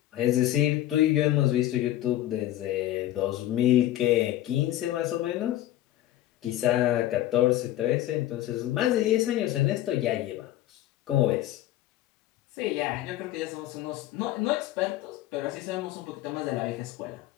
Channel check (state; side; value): quieter; right; 14.0 dB